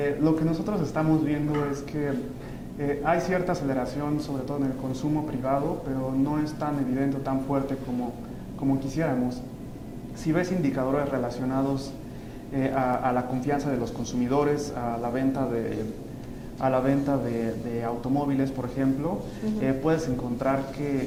Lo que nosotros estamos viendo es que hay cierta aceleración, sobre todo en el consumo privado, pero no es tan evidente o tan fuerte como quisiéramos. Si ves indicadores relacionados a la confianza de los consumidores, a la venta a la venta de automóviles, por ejemplo, puedes encontrar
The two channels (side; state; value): both; identical; correlation 1.00